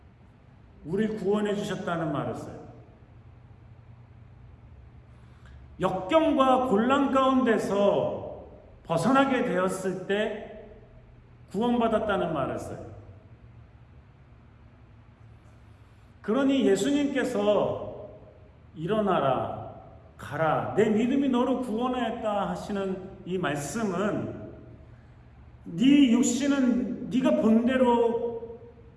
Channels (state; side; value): identical; both; correlation 1.00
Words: 우리를 구원해 주셨다는 말을 써요. 역경과 곤란 가운데서 벗어나게 되었을 때 구원받았다는 말을 써요. 그러니 예수님께서 일어나라, 가라. 내 믿음이 너를 구원하였다 하시는 이 말씀은 네 육신은 네가 본대로